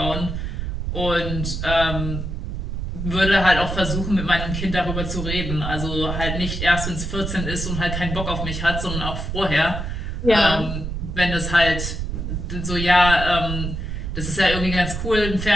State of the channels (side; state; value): right; noise; rumble, 4 dB below the sound